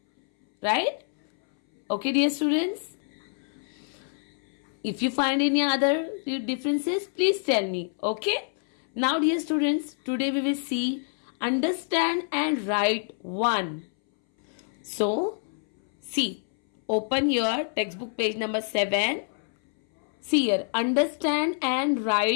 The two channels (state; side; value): silent; right; 60 dB below the other